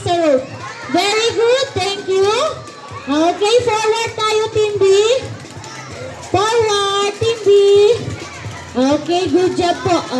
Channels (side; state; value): both; identical; correlation 1.00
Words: sa rope. Very good. Thank you. Okay, forward tayo, Team B. Forward, Team B. Okay, good job po.